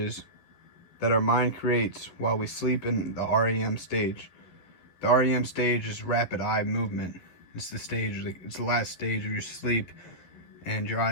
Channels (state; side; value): late; right; 11 ms